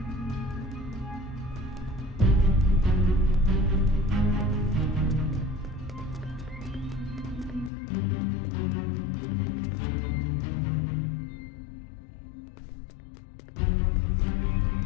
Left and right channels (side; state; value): right; drops out; at 7.7 s